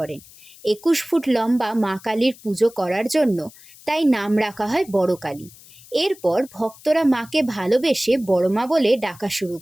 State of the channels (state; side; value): noise; left; hiss, 22 dB below the sound